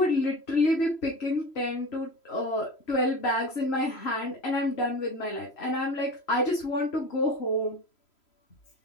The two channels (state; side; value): late; right; 3.0 ms